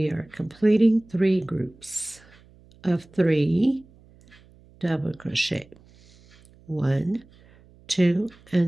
are completing 3 groups of 3 double crochet. 1, 2,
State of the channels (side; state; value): right; noise; hum, 27 dB below the sound